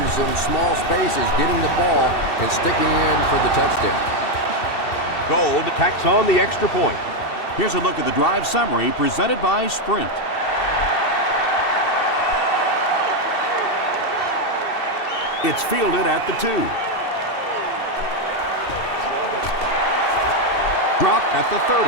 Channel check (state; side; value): late; right; 2.7 ms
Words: in small spaces, getting the ball and sticking in for the touchdown. Gold tacks on the extra point. Here's a look at the drive summary presented by Sprint. It's fielded at the 2. Dropped at the 30.